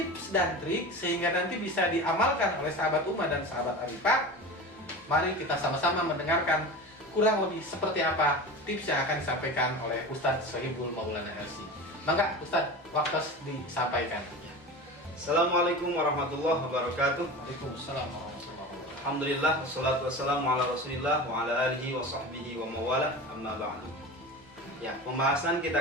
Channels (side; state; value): both; normal; correlation 0.31